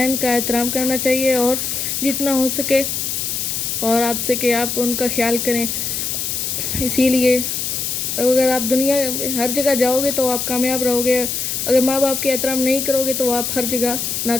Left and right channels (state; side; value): noise; left; hiss, 2 dB below the sound